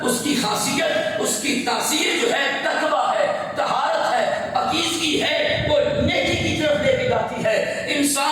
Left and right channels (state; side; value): identical; both; correlation 1.00